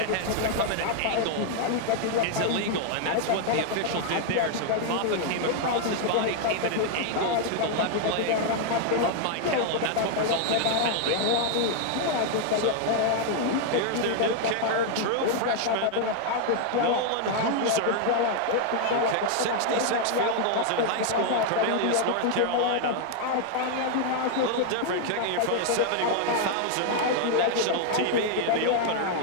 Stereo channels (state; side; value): different; both; correlation 0.00